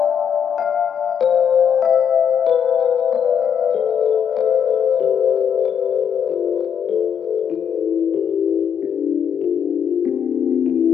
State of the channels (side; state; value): right; quieter; 7.8 dB